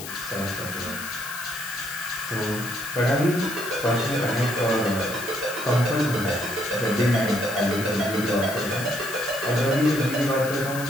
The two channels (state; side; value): noise; left; hiss, 10 dB below the sound